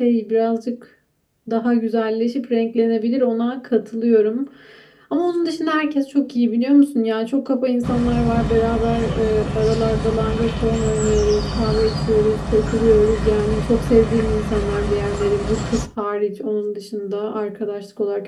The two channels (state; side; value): identical; both; correlation 1.00